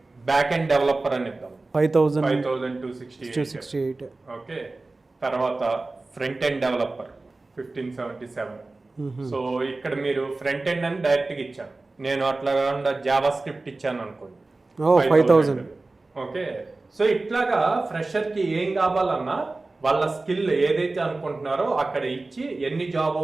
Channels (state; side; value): quieter; left; 3.3 dB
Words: బ్యాక్ ఎండ్ డెవలపర్ అని ఇద్దాం 5268. 5268. ఓకే, తర్వాత ఫ్రంట్ ఎండ్ డెవలపర్ 1577. సో ఇక్కడ మీరు ఫ్రంట్ ఎండ్ అని డైరెక్ట్ గా ఇచ్చాను, నేను అట్లా కాకుండా జావా స్క్రిప్ట్ ఇచ్చాను అనుకోండి 5000. ఓకే, సో ఇట్లాగా ఫ్రెషర్ కి ఏం కావాలన్నా వాళ్ళ స్కిల్ ఏదైతే అనుకుంటున్నారో అక్కడ ఇచ్చి ఎన్ని జాబ్